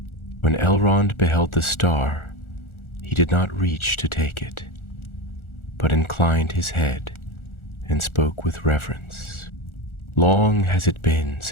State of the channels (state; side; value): late; right; 1.4 ms